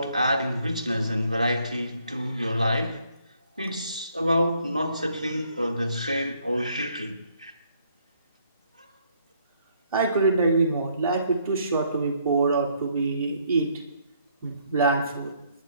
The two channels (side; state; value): both; inverted; correlation -0.68